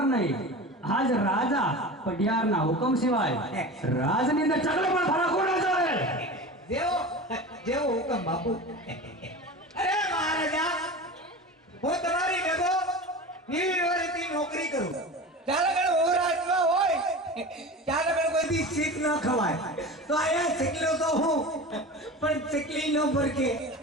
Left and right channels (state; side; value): normal; both; correlation 0.32